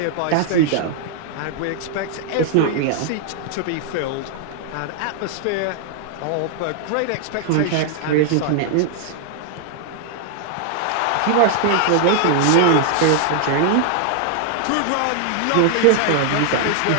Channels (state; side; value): different; both; correlation 0.00